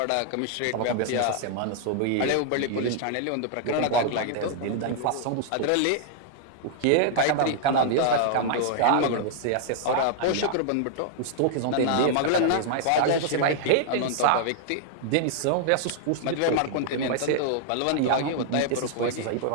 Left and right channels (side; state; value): both; different; correlation -0.01